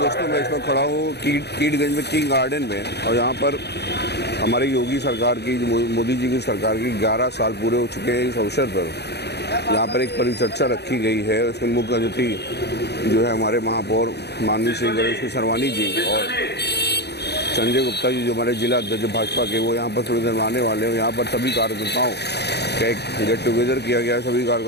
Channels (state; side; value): late; right; 0.48 ms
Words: मैं इस वक्त खड़ा हूँ कीटगंज में किंग गार्डन में, और यहाँ पर हमारी योगी सरकार की, मोदी जी की सरकार की 11 साल पूरे हो चुके हैं। इस अवसर पर यहाँ पर एक परिचर्चा रखी गई है। उसके मुख्य अतिथि जो है हमारे महापौर माननीय श्री गणेश सरवानी जी और संजय गुप्ता जी जो हमारे जिला अध्यक्ष भाजपा के, वो यहाँ पर थोड़ी देर आने वाले हैं। यहाँ पर सभी कार्यकर्ताओं का एक गेट टुगेदर किया गया है, सभी